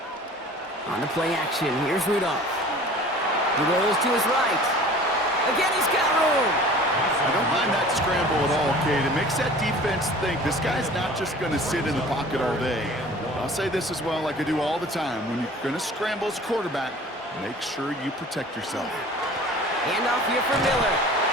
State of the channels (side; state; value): both; normal; correlation 0.45